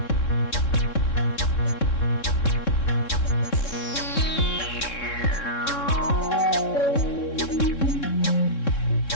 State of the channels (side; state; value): right; late; 3.6 ms